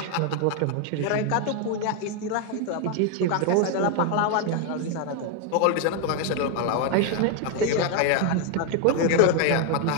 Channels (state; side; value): different; both; correlation 0.01